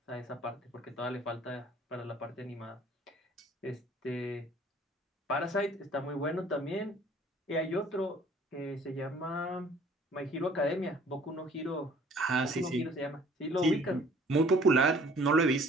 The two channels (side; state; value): both; normal; correlation 0.55